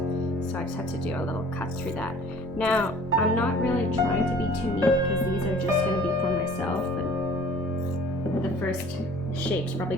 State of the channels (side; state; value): both; normal; correlation 0.49